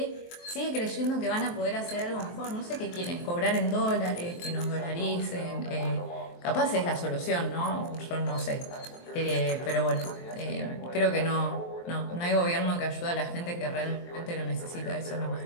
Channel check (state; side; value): late; right; 23 ms